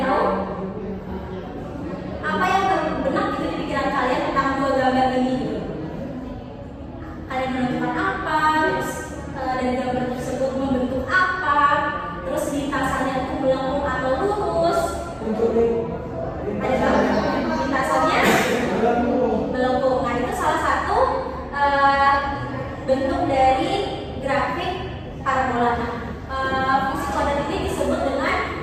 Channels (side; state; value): both; identical; correlation 1.00